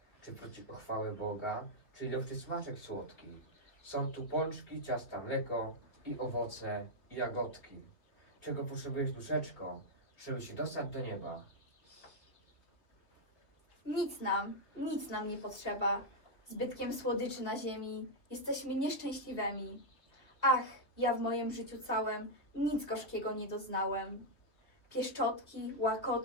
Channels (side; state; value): right; late; 2.6 ms